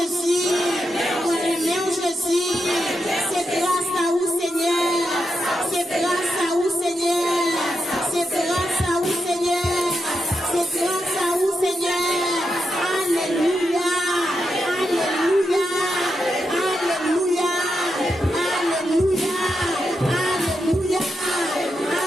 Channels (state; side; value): normal; both; correlation 0.85